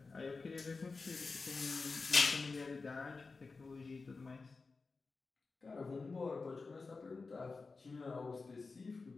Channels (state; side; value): quieter; right; 4.1 dB